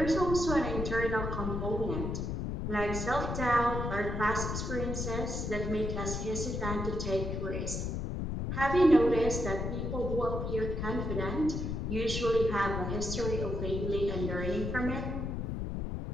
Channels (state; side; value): noise; left; rumble, 2 dB below the sound